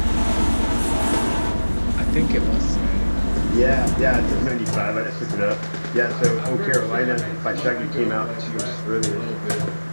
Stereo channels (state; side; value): inverted; both; correlation -1.00